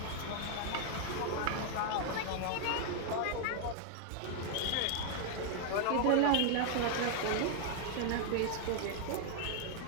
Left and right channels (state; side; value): different; both; correlation 0.00